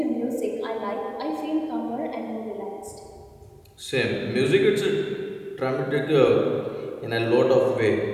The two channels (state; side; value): identical; both; correlation 1.00